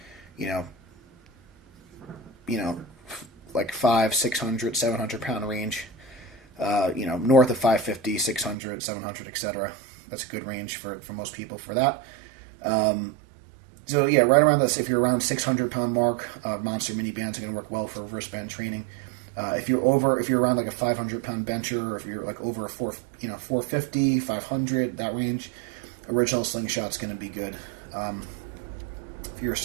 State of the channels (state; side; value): drops out; left; at 8.6 s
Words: like 500, 600, 700 pound range. North of 550, 600, 700, etc. That's a good range for most people for that. So yeah, right around this, if you're around 600-pound mark, monster mini bands are going to work well for reverse band training. If you're around like a 500-pound bencher, or if you're like over a 450, 500, that range, original slingshot's going to be good. If you're a